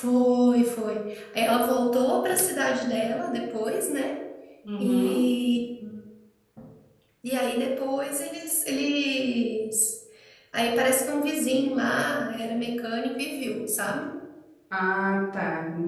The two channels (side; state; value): both; identical; correlation 1.00